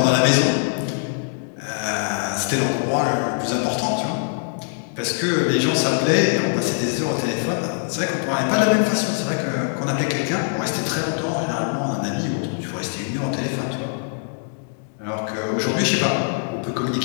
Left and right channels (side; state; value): right; silent; digital silence